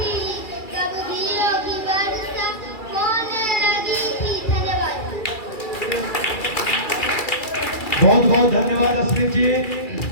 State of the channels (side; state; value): right; late; 2.3 ms